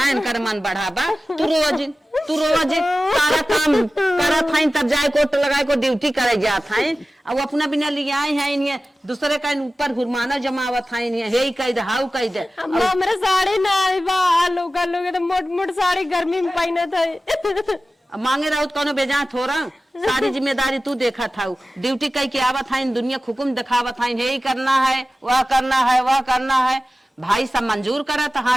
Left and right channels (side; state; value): both; normal; correlation 0.95